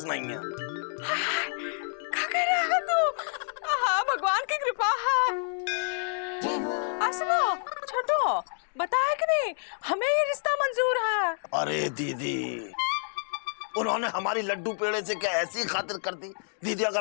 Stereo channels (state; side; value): silent; right; digital silence